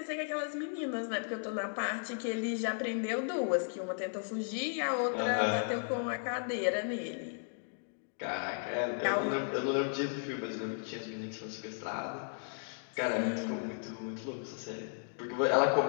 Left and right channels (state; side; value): silent; right; digital silence